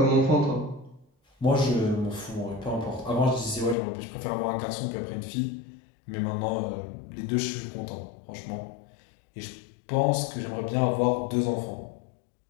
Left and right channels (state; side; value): drops out; right; at 3.8 s